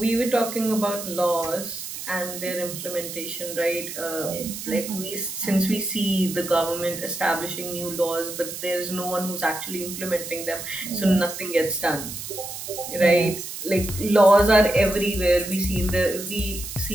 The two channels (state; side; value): noise; right; hiss, 8 dB below the sound